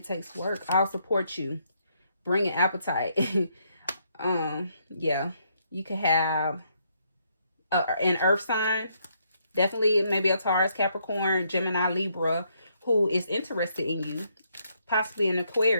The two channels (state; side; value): inverted; both; correlation -0.73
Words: takes work. I'll support you. Bring an appetite. Yeah. You could have an earth sign. Definitely maybe a Taurus, Capricorn, Gemini, Libra, who is interested in you. Possibly an